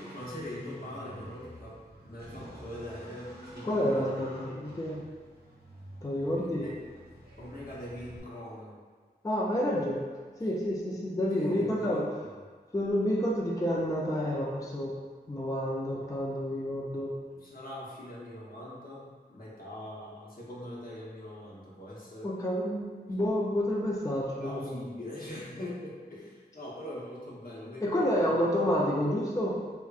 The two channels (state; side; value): normal; both; correlation 0.72